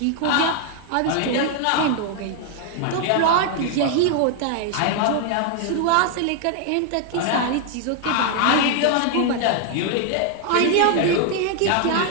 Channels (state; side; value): different; both; correlation 0.00